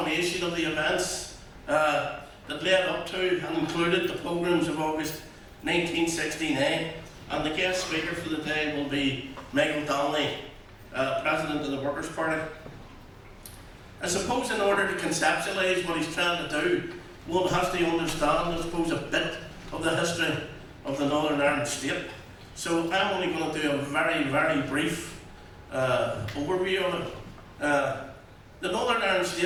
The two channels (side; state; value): both; identical; correlation 1.00